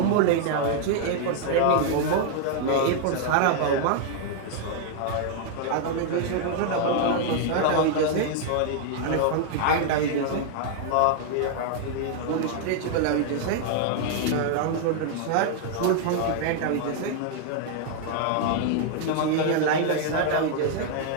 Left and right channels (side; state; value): both; different; correlation -0.01